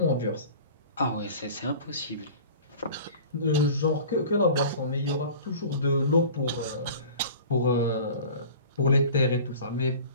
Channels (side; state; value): both; inverted; correlation -0.41